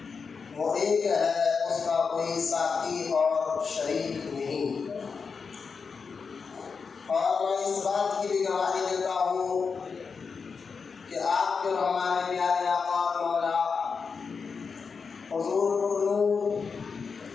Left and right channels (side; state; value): right; quieter; 5.4 dB